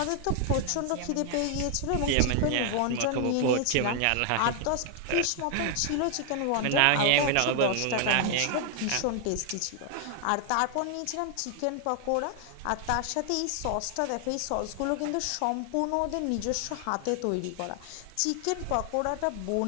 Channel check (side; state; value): both; different; correlation 0.00